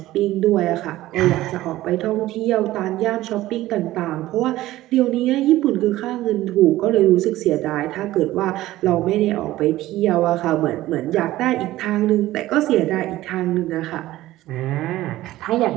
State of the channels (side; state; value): left; quieter; 15.9 dB